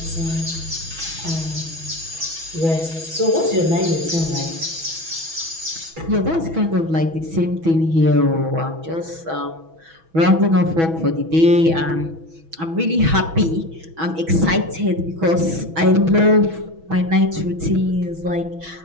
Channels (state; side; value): late; left; 6.1 ms